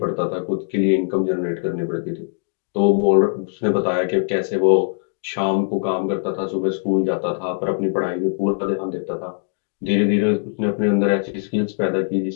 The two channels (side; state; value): right; silent; digital silence